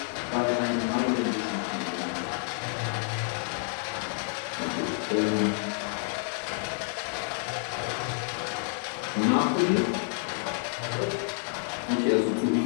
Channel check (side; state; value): right; silent; 59 dB below the other